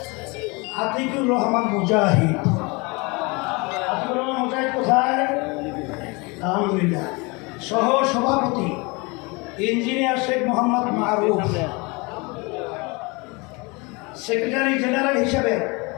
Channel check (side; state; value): right; quieter; 27.4 dB